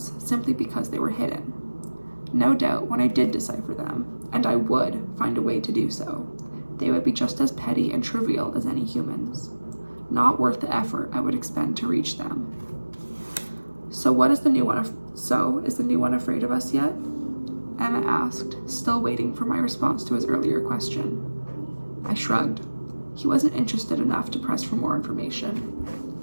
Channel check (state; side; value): inverted; both; correlation -1.00